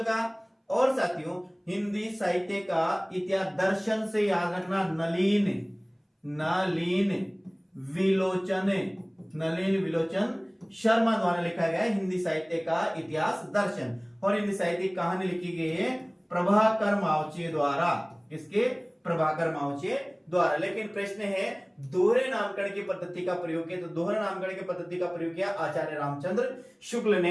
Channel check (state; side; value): identical; both; correlation 1.00